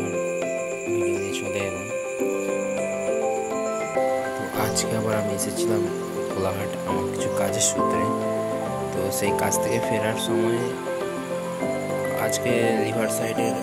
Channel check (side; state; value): both; identical; correlation 1.00